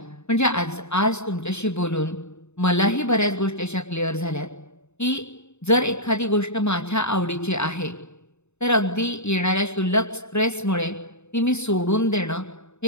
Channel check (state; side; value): late; right; 0.81 ms